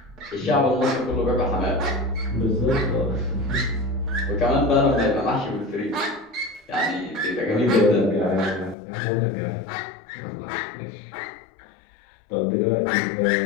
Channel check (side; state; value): right; drops out; at 8.8 s